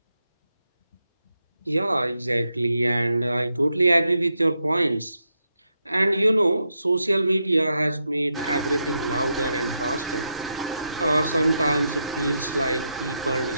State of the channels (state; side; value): inverted; both; correlation -0.84